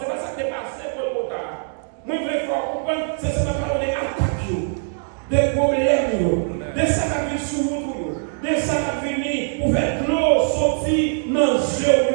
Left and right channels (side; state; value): left; silent; digital silence